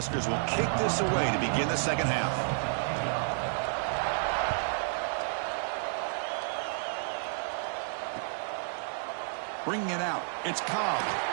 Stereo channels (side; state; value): left; silent; digital silence